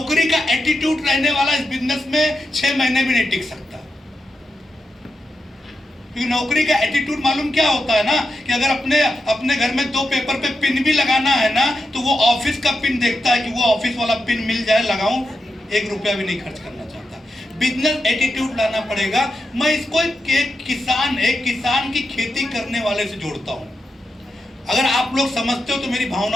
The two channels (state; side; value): normal; both; correlation 0.87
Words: का एटीट्यूड रहने वाला इस बिजनेस में 6 महीने भी नहीं टिक सकता। क्योंकि नौकरी का एटीट्यूड मालूम क्या होता है ना, कि अगर अपने घर में 2 पेपर पे पिन भी लगाना है ना तो वो ऑफिस का पिन देखता है कि वो ऑफिस वाला पिन मिल जाए, लगाऊं, 1 रुपया भी नहीं खर्च करना चाहता। बिजनेस एटीट्यूड लाना पड़ेगा। मैं इसको एक किसान की खेती करने वाले से जोड़ता हूं। अगर आप लोग समझते हो तो मेरी